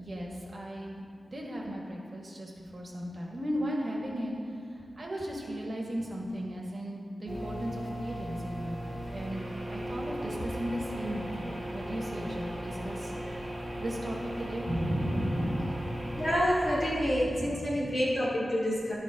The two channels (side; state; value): both; normal; correlation 0.94